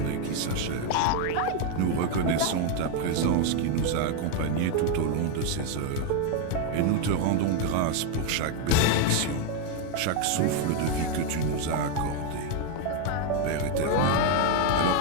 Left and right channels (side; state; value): both; different; correlation 0.01